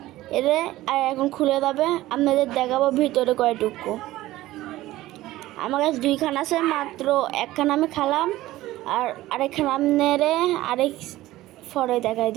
এরে, আর এখন খুলে যাবে। আপনাদের দেখাবো ভিতরে কয়টুকু। আমার কাছে দুইখান আছে, মাত্র একখান আমি খালাম, আর আরেকখান আপনারে আরেক ফরে দেখাই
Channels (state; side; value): quieter; left; 16.4 dB